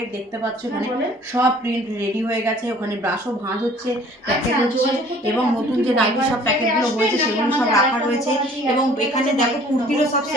দেখতে পাচ্ছ এখানে সব প্রিন্ট রেডি হয়ে গেছে, ওখানে ব্রাশও ভাঁজ হচ্ছে, প্যাকেট হচ্ছে, এবং নতুন যে নাইটির সব প্যাকেটগুলো হয়েছে সেগুলো সব রাখা রয়েছে। এবং এখানে দেখো কুর্তিরও সব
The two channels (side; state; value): both; normal; correlation 0.53